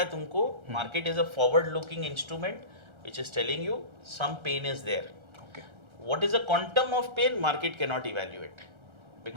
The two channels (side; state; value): left; late; 1.3 ms